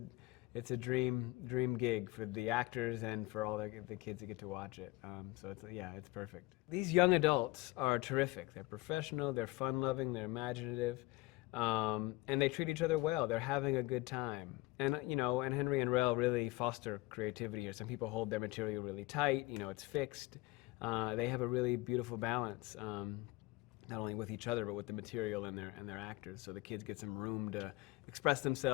a dream gig for the actors and for all the kids that get to watch it. So it's perfect. These young adults are terrific. They're professional, they're fun-loving, they're imaginative, and they treat each other well. They're having a good time. And, you know, and Henry and Rel really foster creativity here. Some people hold their material really tight, you know, it's fixed. They have a really beautiful balance, not only with each other, but with the material and their actors. So the kids get some room to express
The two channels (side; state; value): right; quieter; 21.0 dB